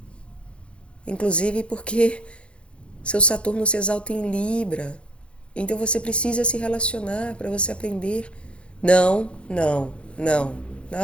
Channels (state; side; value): late; right; 0.058 ms